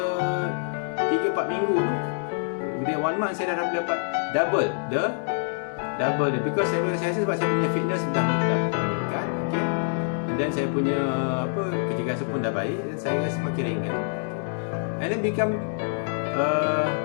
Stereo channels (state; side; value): silent; right; digital silence